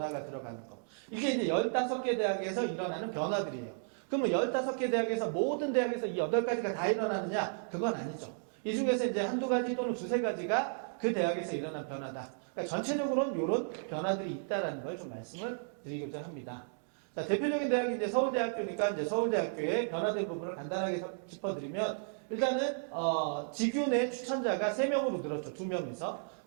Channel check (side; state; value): left; silent; digital silence